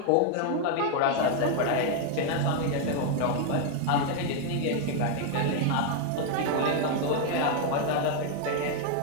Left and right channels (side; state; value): both; different; correlation 0.00